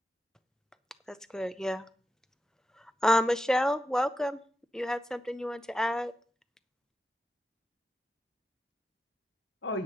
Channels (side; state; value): both; normal; correlation 0.89